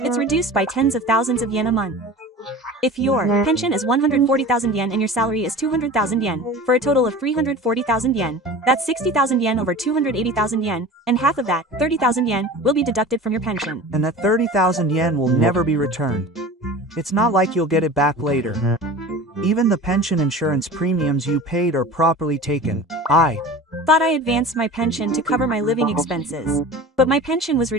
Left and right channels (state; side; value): normal; both; correlation 0.37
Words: reduced by tens of thousands of yen a month. If your pension is 140,000 yen and your salary is 200,000 yen, for a total of 340,000 yen, that's 60,000 yen over 280,000 yen, and half of that, 30,000 yen, will be deducted from your pension. And that 30,000 yen will never be returned. It's not like you'll get it back later. Even the pension insurance premiums you paid are properly taken. I thought I advanced my pension to cover my living expenses. But my pension was